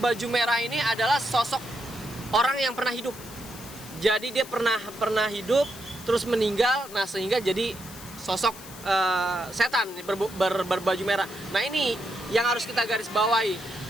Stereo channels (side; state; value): left; noise; hiss, 16 dB below the sound